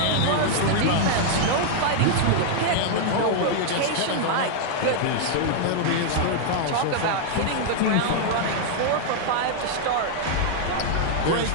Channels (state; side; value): different; both; correlation 0.00